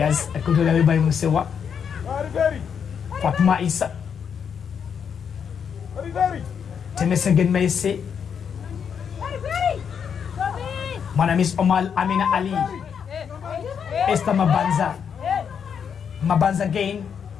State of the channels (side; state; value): right; quieter; 7.3 dB